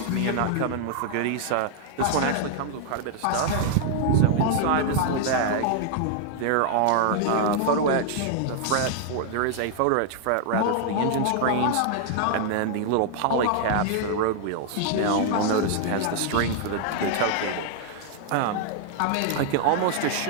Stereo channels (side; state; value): both; different; correlation -0.01